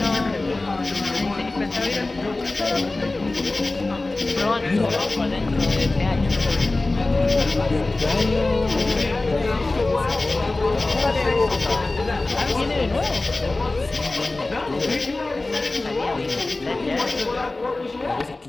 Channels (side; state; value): right; quieter; 3.1 dB